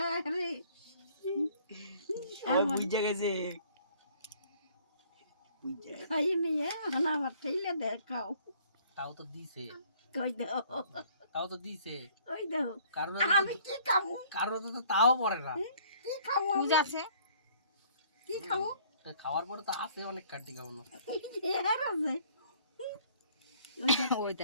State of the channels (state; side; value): inverted; both; correlation -0.58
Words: রে ও বুঝে গেছে। খাই নিয়ে আমার ঠেলে দেখাও তাও তো দিছে, কই দাও তাও তো দিছে। কই দাও কারণ আমি কি খাবো কারণ তো তাও পড়ে না। কি খাবো বুঝ আছে কি খাবো তা খাওয়ার পরে তো আছে অনেক কাটি খাওয়ানো। এর আছে ওই